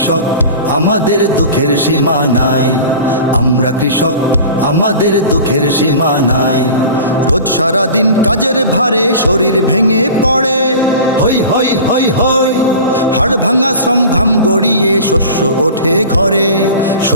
আমাদের দুঃখের সীমা নাই। আমরা কৃষক, আমাদের দুঃখের সীমা নাই। রোজ সারাদিন কাজের ভারে শরীর ভেঙে পড়ে, হই হই হই হই। হাড় ভাঙা শ্রম ঘাম গড়িয়ে শস্য ওঠে ঘরে,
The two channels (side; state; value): both; inverted; correlation -0.37